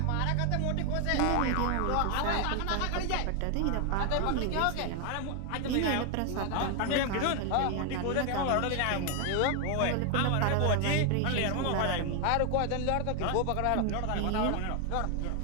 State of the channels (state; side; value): different; both; correlation 0.00